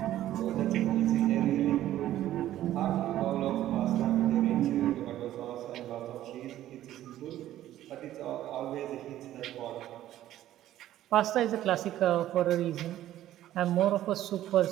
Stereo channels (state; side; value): quieter; left; 13.2 dB